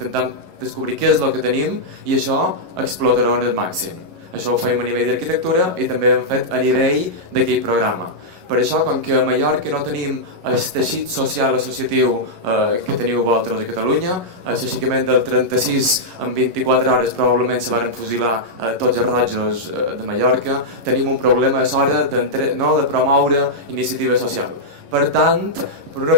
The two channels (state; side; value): late; left; 11 ms